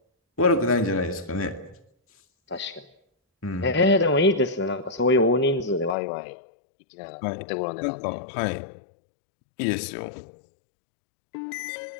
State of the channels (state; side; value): drops out; right; at 6.0 s